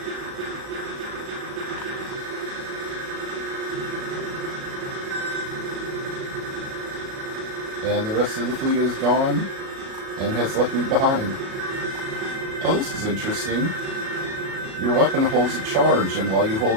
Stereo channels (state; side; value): late; left; 36 ms